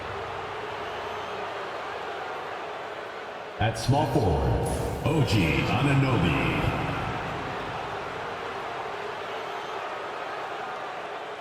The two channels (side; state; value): both; identical; correlation 1.00